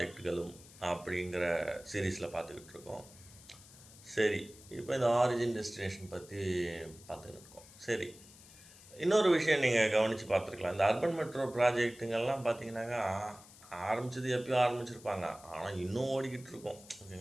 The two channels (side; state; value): left; noise; hiss, 21 dB below the sound